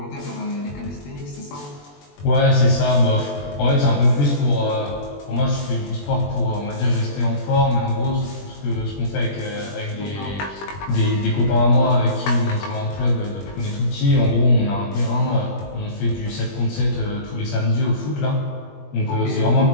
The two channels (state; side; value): late; right; 21 ms